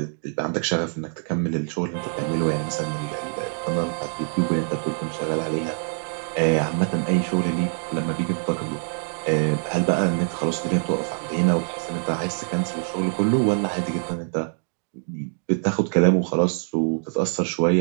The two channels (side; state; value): left; silent; digital silence